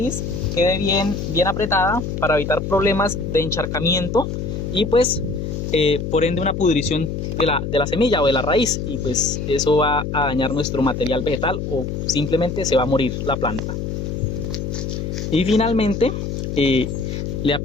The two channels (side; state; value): left; noise; hum, 4 dB below the sound